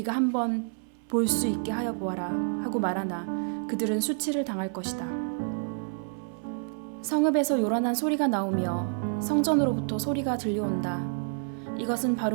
한번 볼 수 있게 하여 보아라 하고 말하나 그들은 수치를 당할 것이다. 성읍에서 요란한 소리가 나오며 성전으로부터 소리가 들려온다. 이것은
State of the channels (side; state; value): left; silent; 59 dB below the other